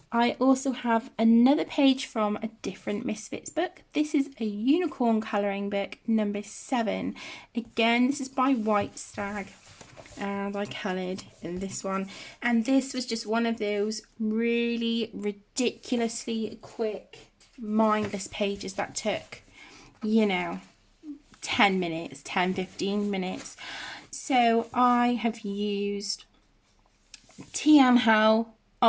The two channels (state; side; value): identical; both; correlation 1.00